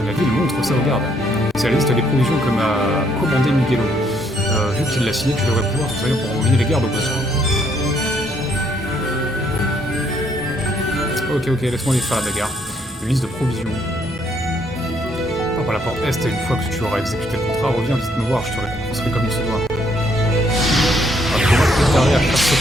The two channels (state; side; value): normal; both; correlation 0.70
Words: de la ville, montre ça au garde. C'est la liste des provisions que m'a commandé Miguelo. Vu qu'il l'a signé, tu devrais pouvoir t'en servir pour envoyer les gardes au besoin. Ok, laisse-moi aller faire la bagarre. Une liste de provisions. Par la porte est, une fois que tu auras exécuté le contrat, reviens vite me voir, je te récompenserai comme il se doit. Akumako préparé à faire ce